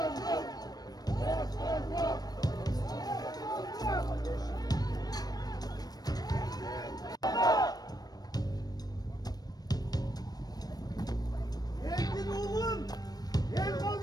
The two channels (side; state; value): right; late; 0.19 ms